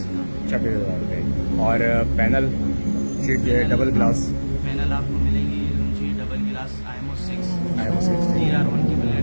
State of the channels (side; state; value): both; inverted; correlation -1.00